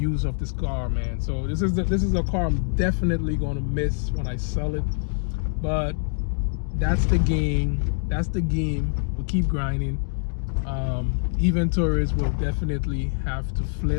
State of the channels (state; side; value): silent; right; digital silence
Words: of this car, man. So this is a car I'm definitely gonna miss when I sell it. But that's the game. We keep grinding. Inventories will definitely have to